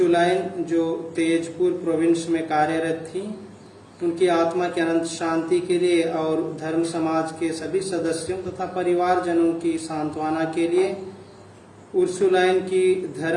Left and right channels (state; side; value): identical; both; correlation 1.00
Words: जो तेजपुर प्रोविंस में कार्यरत थी, उनकी आत्मा की अनंत शांति के लिए और धर्म समाज के सभी सदस्यों तथा परिवारजनों की सांत्वना के लिए उर्सुलाइन की